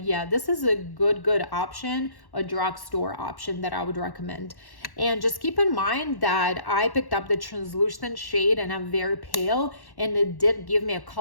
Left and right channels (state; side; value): late; right; 1.1 ms